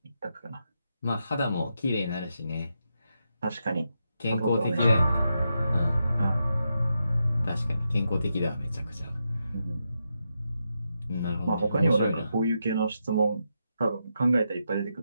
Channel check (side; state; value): both; inverted; correlation -0.84